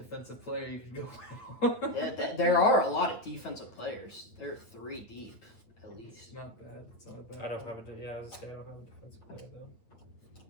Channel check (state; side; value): late; right; 9.2 ms